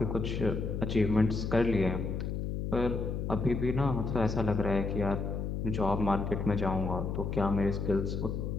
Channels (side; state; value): left; noise; hum, 2 dB below the sound